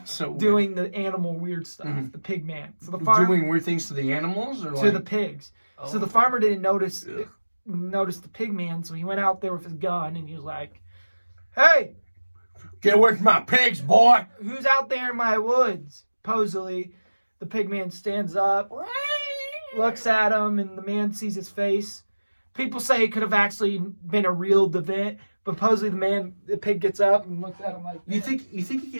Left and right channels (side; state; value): both; inverted; correlation -1.00